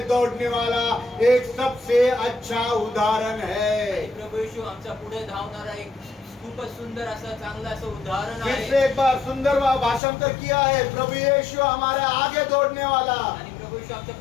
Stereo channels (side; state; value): right; drops out; at 10.0 s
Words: दौड़ने वाला एक सबसे अच्छा उदाहरण है। प्रभू येशू आमचा पुढे धावणारा एक खूपच सुंदर असं चांगलं असं उदाहरण फिर आहे. से एक बार सुंदर भाषांतर किया है। प्रभु यीशु हमारे आगे दौड़ने वाला आणि प्रभू येशू आमच्या